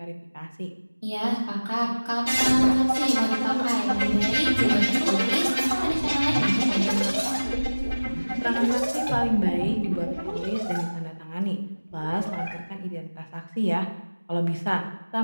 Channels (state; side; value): inverted; both; correlation -1.00